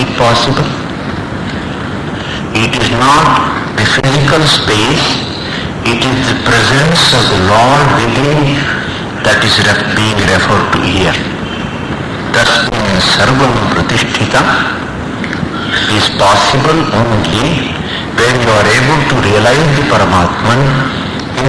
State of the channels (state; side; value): identical; both; correlation 1.00